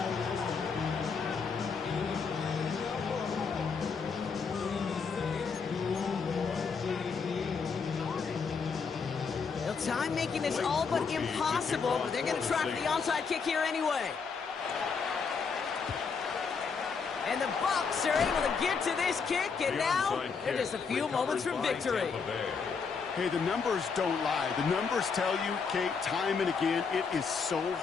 Time making this all but impossible, but they're going to try for the onside kick here anyway. And the Bucs are able to get to this kick, and now they're just a few moments from victory. Hey, the numbers don't lie. The numbers tell you, Kate, time and again, it is so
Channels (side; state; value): right; quieter; 5.4 dB